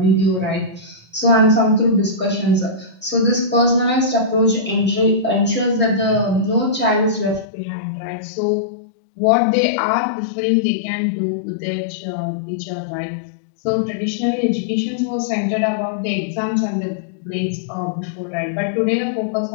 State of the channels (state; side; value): drops out; right; at 7.5 s